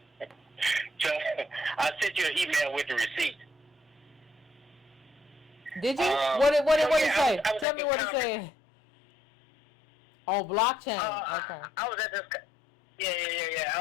So I sent you an email with the receipt. Did you? Um, What did so, it yeah, say? I was Tell at me this what it conference. said. Oh, blockchain. Okay. I was at this.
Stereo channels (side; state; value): right; drops out; at 7.7 s